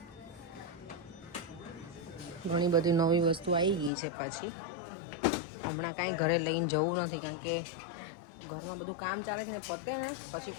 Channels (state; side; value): drops out; right; at 3.9 s